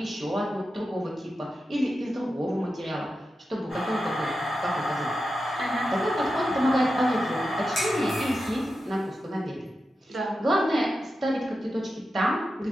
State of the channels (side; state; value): both; normal; correlation 0.90